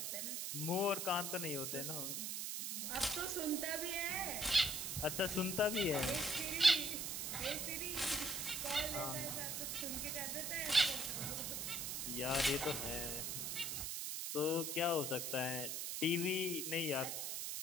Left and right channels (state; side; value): noise; right; hiss, 2 dB below the sound